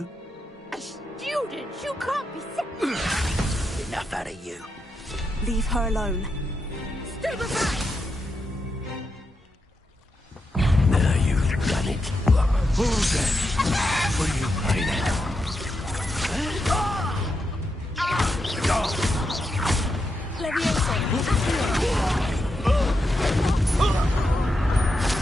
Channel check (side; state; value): both; normal; correlation 0.85